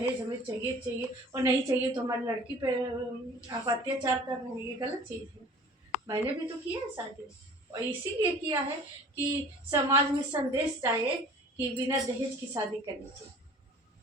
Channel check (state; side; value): normal; both; correlation 0.46